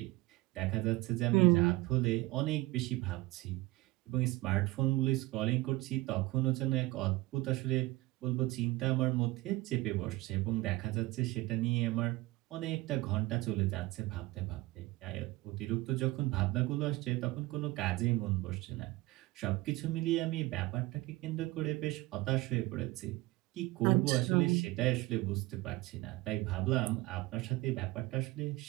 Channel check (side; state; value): left; quieter; 20.1 dB